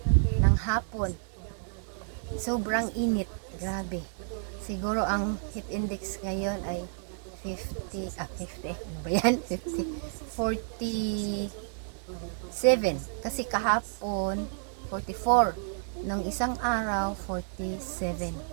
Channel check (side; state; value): left; silent; 58 dB below the other